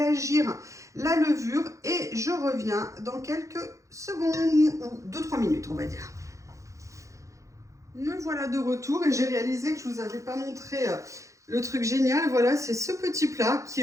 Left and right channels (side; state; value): left; late; 0.15 ms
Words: la levure. Et je reviens dans quelques secondes, ou 2-3 minutes, on va dire. Me voilà de retour et j'ai réalisé que je ne vous avais pas montré le truc génial. Voilà, c'est ce petit plat